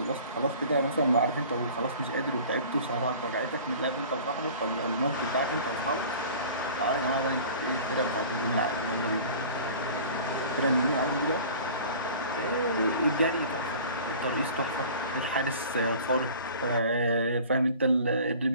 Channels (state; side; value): inverted; both; correlation -0.43